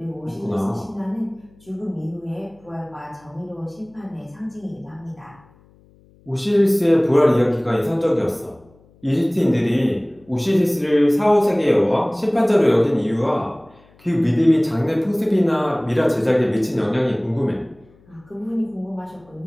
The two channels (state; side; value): noise; left; hum, 29 dB below the sound